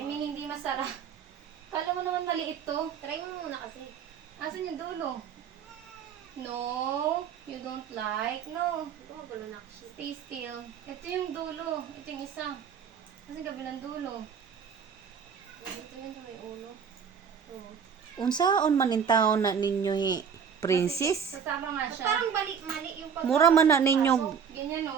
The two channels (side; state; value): left; quieter; 7.1 dB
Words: mean, hindi masarap. Kala mo naman maliit to. Try mo muna kasi. Asan yung dulo? No, you don't like. No, Ito magulo na kasi. stay still. Ito yung dulo. Ito yung isa. Kasi gabi ng dulo. Ito yun sa may ulo. Oo. Unsaon man in taon na ninyo princess? Kasama nga siya. Parang balik mali yung pag... Mura man na ninyo Ganyan